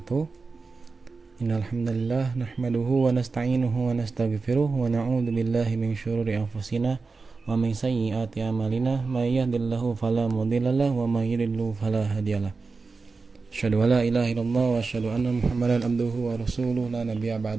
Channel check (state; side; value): quieter; left; 4.2 dB